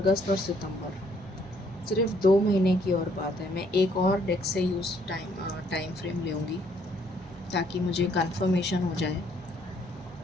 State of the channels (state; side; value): noise; right; hum, 22 dB below the sound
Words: और सितंबर, सिर्फ 2 महीने की और बात है। मैं एक और डेक से यूज़ टाइम फ्रेम लूँगी ताकि मुझे कंफर्मेशन हो जाए